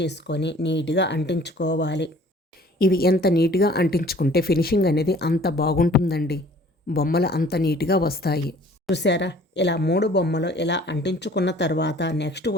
నీట్గా అంటించుకోవాలి. ఇవి ఎంత నీట్గా అంటించుకుంటే ఫినిషింగ్ అనేది అంత బాగుంటుందండి. బొమ్మలు అంత నీట్గా వస్తాయి. చూసారా, ఇలా 3 బొమ్మలు ఇలా అంటించుకున్న తర్వాత నెక్స్ట్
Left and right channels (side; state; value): both; normal; correlation 0.52